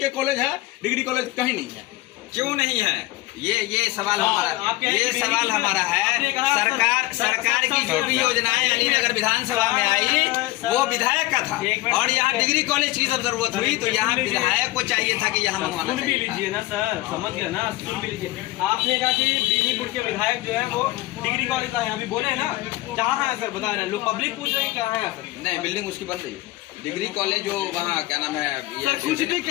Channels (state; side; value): quieter; right; 18.6 dB